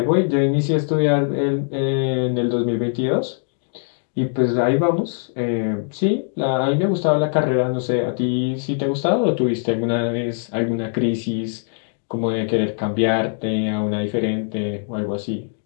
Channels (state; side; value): silent; right; digital silence